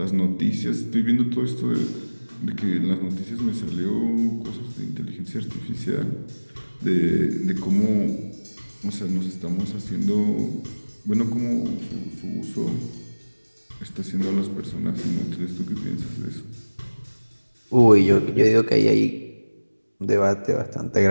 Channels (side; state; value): both; inverted; correlation -1.00